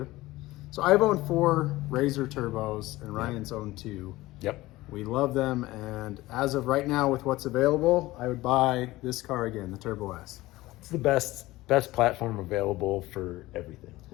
So I've owned 4 RZR Turbos, and Ryan's owned 2. Yep. We love them, and as of right now, with what's available, I would buy this car again, the Turbo S. It's the best platform available for everything.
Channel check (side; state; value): right; quieter; 18.4 dB